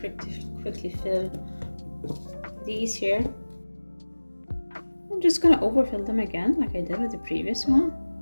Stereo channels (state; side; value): inverted; both; correlation -1.00